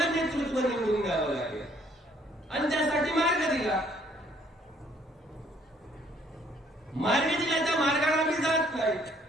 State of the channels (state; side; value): normal; both; correlation 0.63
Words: नेतृत्व निवडून द्यावं लागेल आणि त्यासाठी मार्ग दिला. मार्ग दिला त्या मार्गाला आम्ही जात नाही.